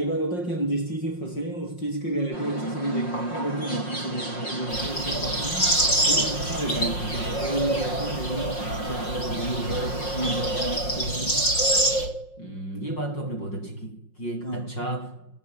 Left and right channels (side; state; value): right; late; 5.6 ms